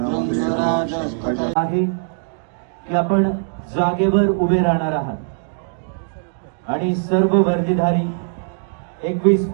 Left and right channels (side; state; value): left; silent; digital silence